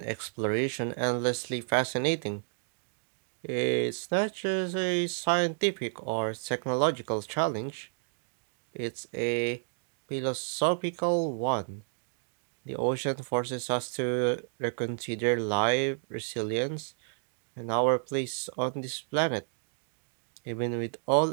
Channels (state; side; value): silent; left; digital silence